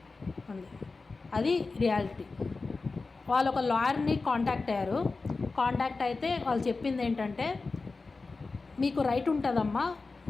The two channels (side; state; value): right; quieter; 3.9 dB